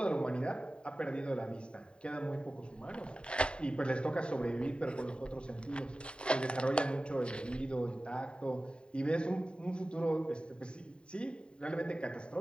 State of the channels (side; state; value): right; late; 0.052 ms